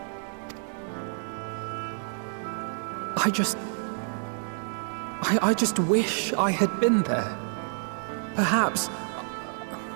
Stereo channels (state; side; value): silent; left; 59 dB below the other